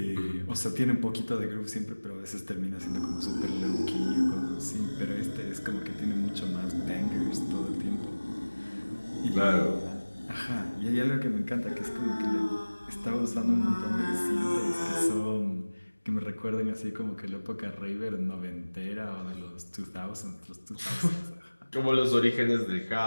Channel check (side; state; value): both; inverted; correlation -1.00